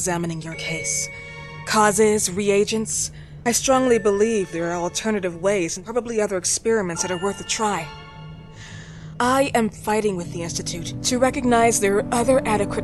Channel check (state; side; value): identical; both; correlation 1.00